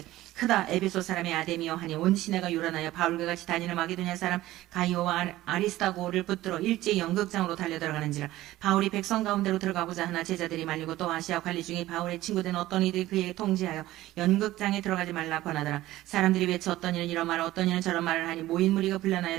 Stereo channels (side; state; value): left; quieter; 16.0 dB